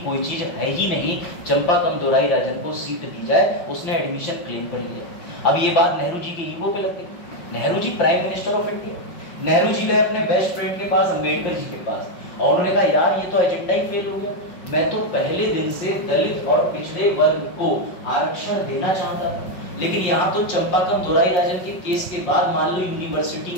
कोई चीज है ही नहीं, चंपाकम दोराईराजन को सीट दी जाए। उसने एडमिशन क्लेम कर लिया। अब ये बात नेहरू जी की ईगो पे लग गई। Nehru ji prime minister of India, Nehru ji गए अपने बेस्ट फ्रेंड के पास, अंबेडकर जी के पास, और उन्होंने कहा यार ये तो एजेंडा ही फेल हो गया, मैं तो पहले दिन से दलित और पिछड़े वर्ग को आरक्षण देना चाहता था, लेकिन यहाँ तो चंपाकम दोराईराजन के केस के बाद मान लो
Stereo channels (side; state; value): right; late; 5.5 ms